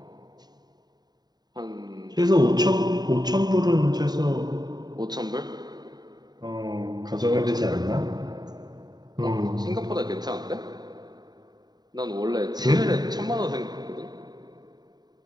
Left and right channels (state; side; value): late; left; 0.20 ms